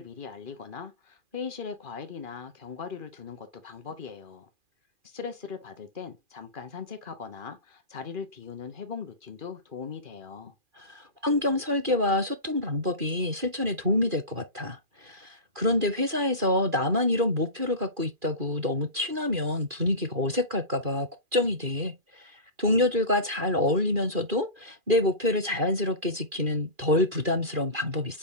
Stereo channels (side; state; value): left; late; 2.4 ms